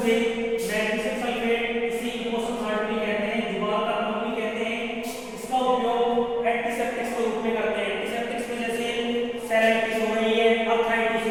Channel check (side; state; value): both; identical; correlation 1.00